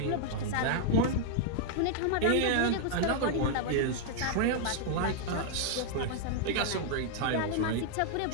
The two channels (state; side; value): different; both; correlation 0.00